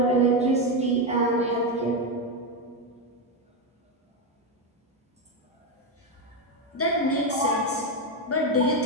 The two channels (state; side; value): normal; both; correlation 0.09